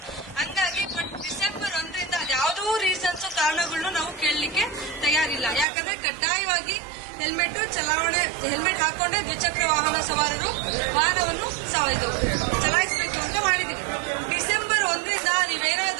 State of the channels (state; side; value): drops out; left; at 5.7 s